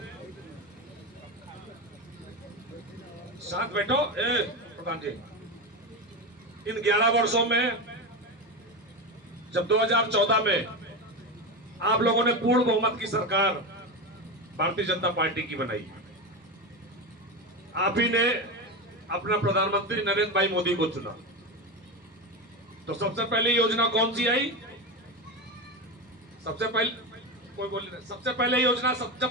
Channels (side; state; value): both; normal; correlation 0.18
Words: साथ बैठो प्रधान जी, इन 11 वर्षों में जब 2014 में आप लोगों ने पूर्ण बहुमत की सरकार भारतीय जनता पार्टी की बनाई, आप ही ने अपना प्रधानमंत्री नरेंद्र भाई मोदी को चुना, तो सबसे पहले योजना कौन सी आई? सबसे पहले कोई बोल नहीं, सबसे पहले योजना